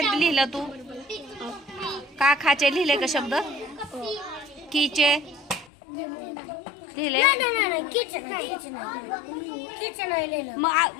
लिहिलं तू? का खाचे लिहिले का शब्द? कीचे लिहिले?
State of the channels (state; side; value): drops out; right; at 5.7 s